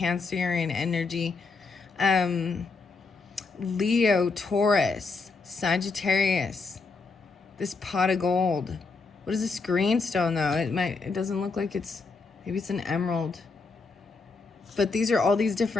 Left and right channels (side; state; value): right; quieter; 4.2 dB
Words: energy, Leo, Taurus, Sagittarius, this pot of gold. What is this green stone though? It doesn't look like maybe it's an emerald. But these are all these